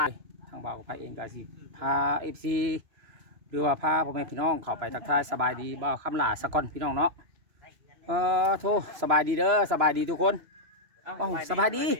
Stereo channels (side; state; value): left; late; 3.0 ms